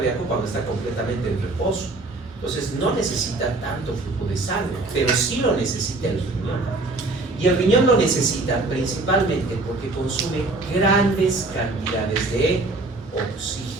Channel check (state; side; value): quieter; left; 3.1 dB